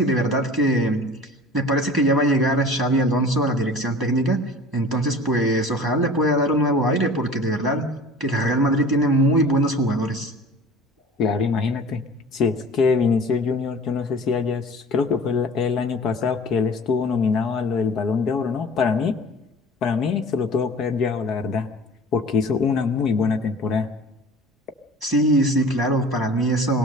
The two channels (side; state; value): both; normal; correlation 0.42